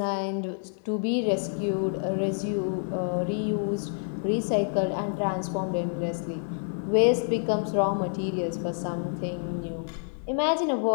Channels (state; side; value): silent; right; 59 dB below the other